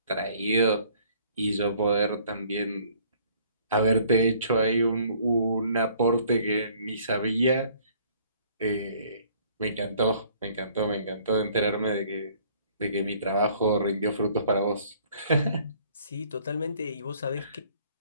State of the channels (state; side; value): inverted; both; correlation -0.59